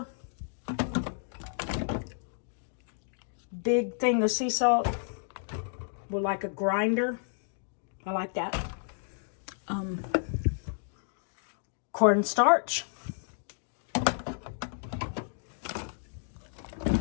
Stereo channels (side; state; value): right; silent; digital silence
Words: Big thing of sea salt with like a grinder. I like that. Cornstarch.